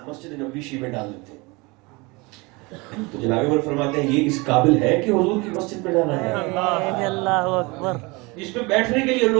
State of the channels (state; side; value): quieter; left; 25.8 dB